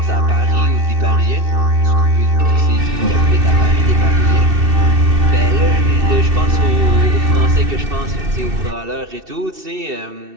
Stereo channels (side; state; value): left; late; 2.7 ms